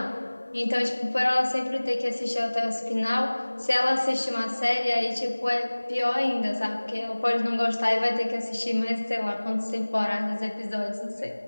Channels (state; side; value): inverted; both; correlation -1.00